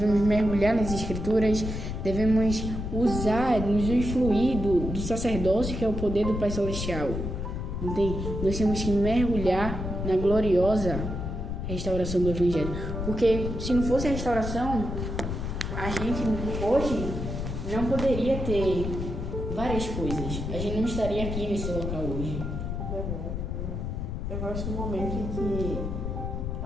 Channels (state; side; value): noise; left; rumble, 4 dB below the sound